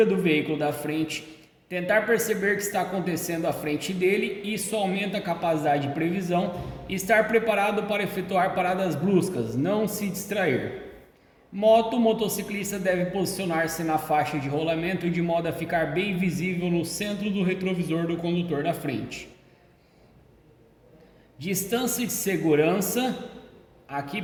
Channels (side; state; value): both; identical; correlation 1.00